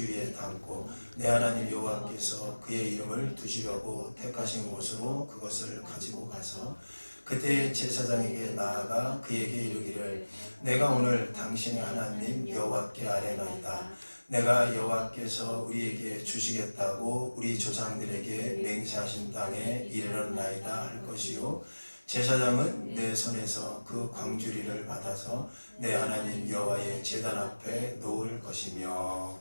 담고 내 하나님 여호와께서 그의 이름을 두시려고 택하신 곳으로 그것을 가지고 가서 그때 제사장에게 나아가 그에게 이르기를 내가 오늘 당신의 하나님 여호와께 아뢰나이다. 내가 여호와께서 우리에게 주시겠다고 우리 조상들에게 맹세하신 땅에 이르렀나이다 할 것이요 제사장은 내 손에서 그 광주리를 받아서 내 하나님 여호와의 제단 앞에 놓을 것이며.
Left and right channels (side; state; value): both; inverted; correlation -1.00